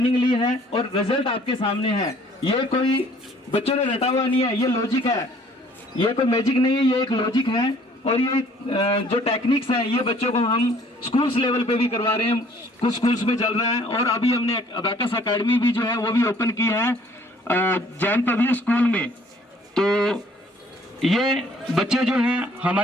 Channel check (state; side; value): normal; both; correlation 0.58